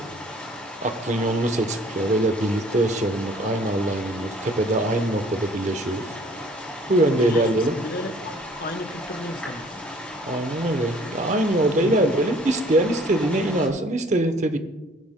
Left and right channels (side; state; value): both; normal; correlation 0.56